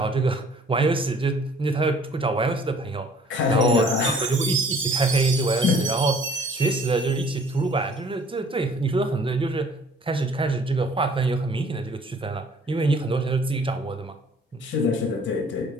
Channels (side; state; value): both; normal; correlation 0.54